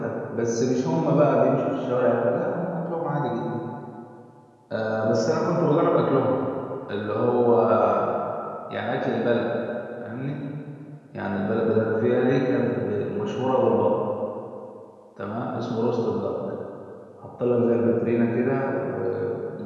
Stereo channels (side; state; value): both; identical; correlation 1.00